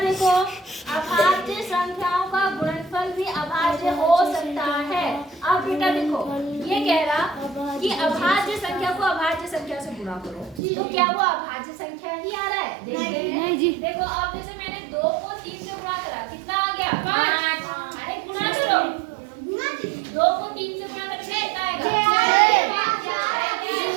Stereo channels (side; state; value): left; drops out; at 10.6 s